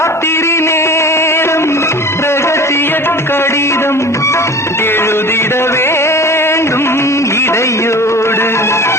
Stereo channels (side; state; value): both; normal; correlation 0.38